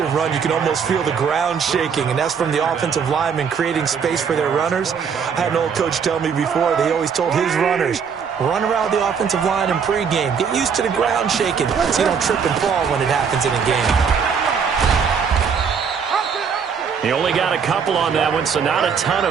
run, you can almost feel the ground shaking, and that's from the offensive linemen creating space for their runners. I had an old coach tell me before, they always told his runners, run around the offensive line in pregame. Get used to the ground shaking so you don't trip and fall when it happens in a game. He only got a couple on that one, so not a ton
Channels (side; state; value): left; quieter; 6.5 dB